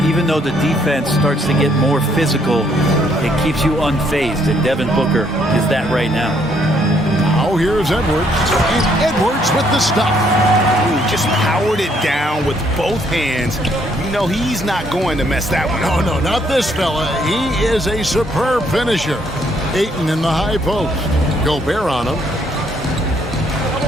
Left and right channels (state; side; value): normal; both; correlation 0.69